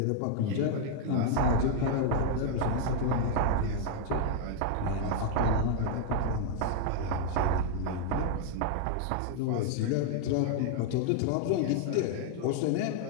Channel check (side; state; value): both; different; correlation 0.00